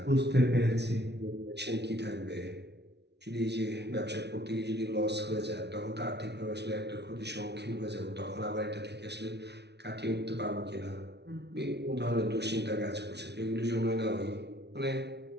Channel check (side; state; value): left; late; 0.50 ms